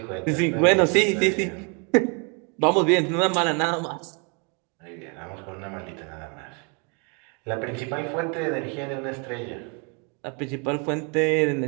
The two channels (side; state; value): left; quieter; 35.3 dB